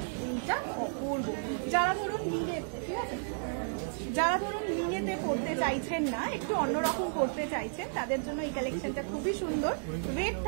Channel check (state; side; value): silent; left; digital silence